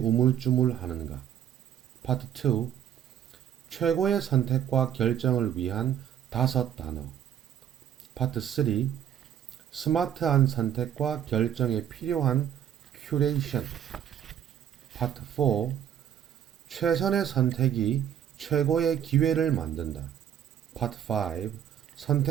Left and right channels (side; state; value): left; quieter; 9.8 dB